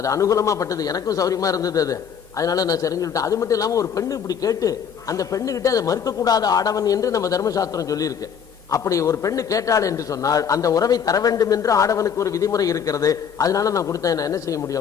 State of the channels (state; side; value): quieter; right; 7.5 dB